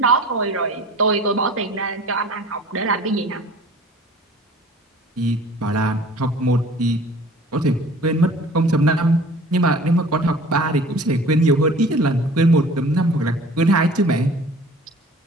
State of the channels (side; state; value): both; normal; correlation 0.46